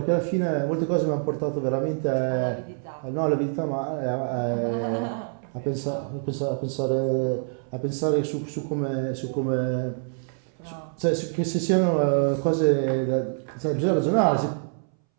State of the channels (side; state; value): left; silent; 61 dB below the other